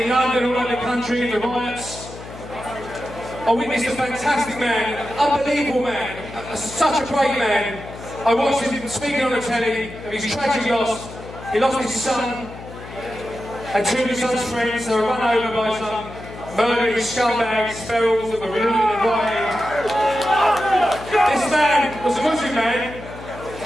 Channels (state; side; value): noise; left; hum, 14 dB below the sound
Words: in London, all over the country, in the riots, I witnessed a fantastic man, an unbelievable man, such a great man. I watched him speaking on the telly of his tragic loss. He lost his son and two of his son's friends. They were run over by some murdering scumbags, ferals that were looting and rioting. This man was a Muslim man